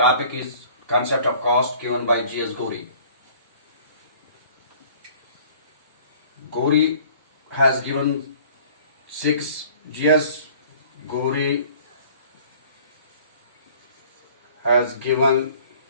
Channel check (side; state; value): both; inverted; correlation -0.51